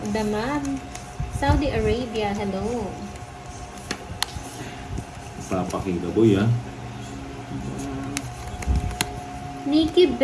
Damam, Saudi Arabia, hello. Papakita boy ah. Nikki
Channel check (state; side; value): identical; both; correlation 1.00